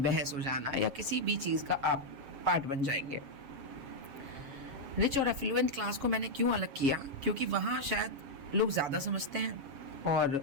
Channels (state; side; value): late; left; 7.3 ms